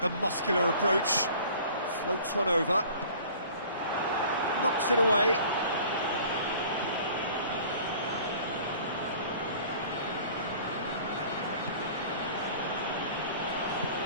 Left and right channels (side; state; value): both; inverted; correlation -0.48